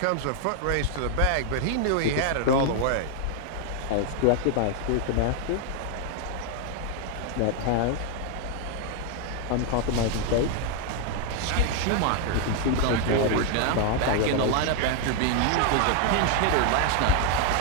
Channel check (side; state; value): both; different; correlation 0.00